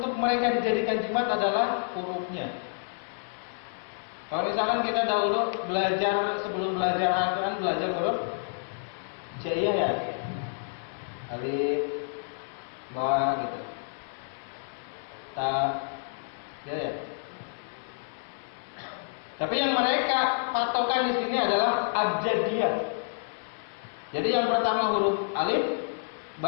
mereka dijadikan jimat adalah hurufnya. Kalau misalkan kita dahulu belajar, sebelum belajar Al-Quran, belajar huruf Jaiyah ya, alif, ba gitu, ta, ya. Tapi yang mereka patokan di sini adalah abjadiyah. Jadi yang pertama huruf alif,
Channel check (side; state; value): right; silent; 59 dB below the other